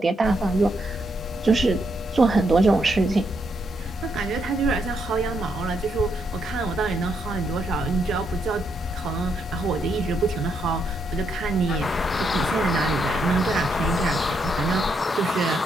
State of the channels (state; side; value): normal; both; correlation 0.78